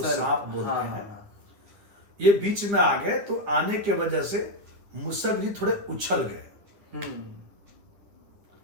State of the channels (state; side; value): late; left; 9.9 ms